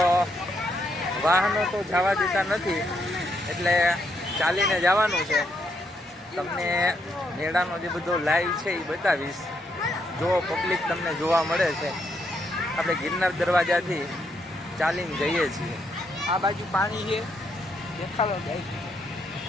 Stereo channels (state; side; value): normal; both; correlation 0.77